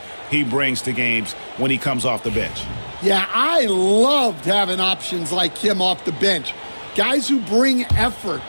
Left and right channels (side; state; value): both; inverted; correlation -1.00